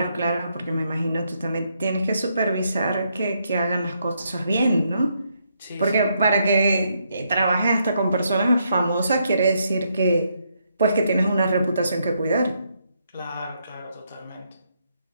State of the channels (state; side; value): inverted; both; correlation -0.77